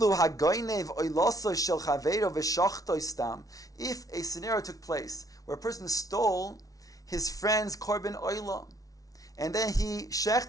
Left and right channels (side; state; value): right; late; 0.18 ms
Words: hagoynev oiloso shel chaveiro v'shachto stam. If a scenario took place where a person stole his friend's korban oila, and then he